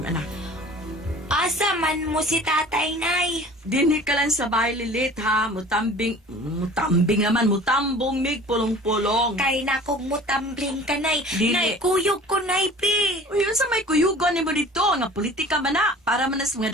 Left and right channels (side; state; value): both; normal; correlation 0.45